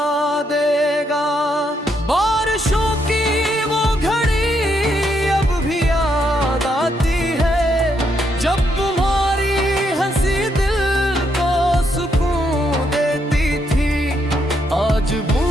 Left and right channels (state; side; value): normal; both; correlation 0.77